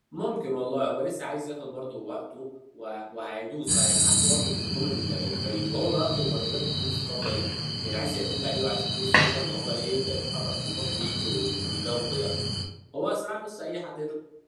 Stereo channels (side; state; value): both; identical; correlation 1.00